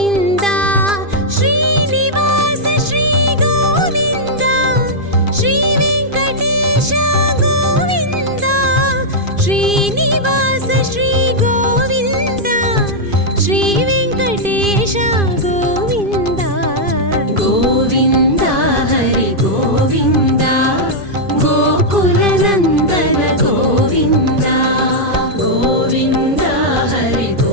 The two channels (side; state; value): left; late; 2.5 ms